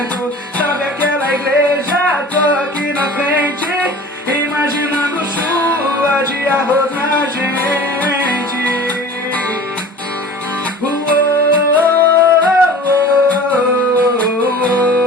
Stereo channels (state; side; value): normal; both; correlation 0.41